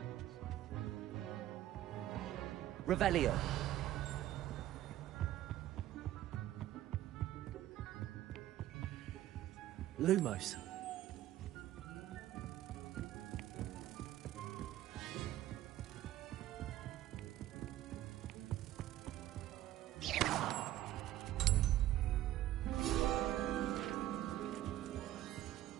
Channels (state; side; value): quieter; left; 13.8 dB